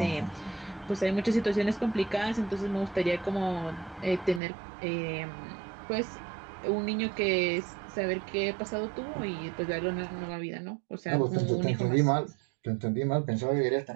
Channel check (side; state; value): left; drops out; at 4.4 s